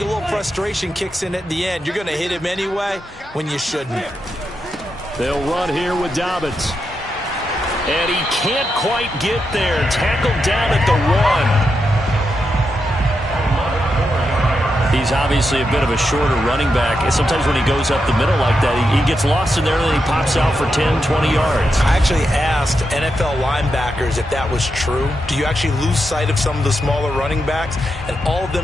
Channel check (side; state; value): both; normal; correlation 0.85